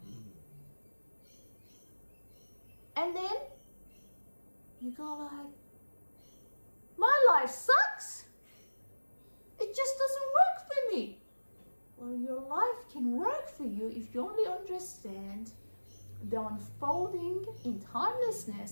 And then you go like, my life sucks. It just doesn't work for me. Well, your life can work for you if you only understand the unfolding in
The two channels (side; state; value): both; inverted; correlation -1.00